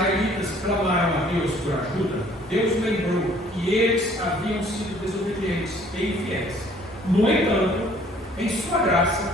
clamaram a Deus por ajuda, Deus lembrou que eles haviam sido desobedientes e infiéis. No entanto, em sua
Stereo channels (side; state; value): both; normal; correlation 0.57